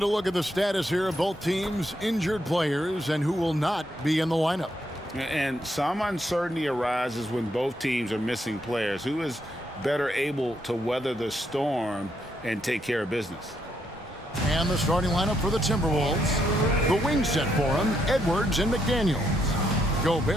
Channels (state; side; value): normal; both; correlation 0.77